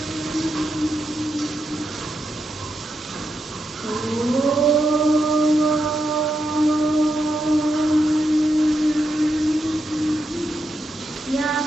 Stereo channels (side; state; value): both; normal; correlation 0.84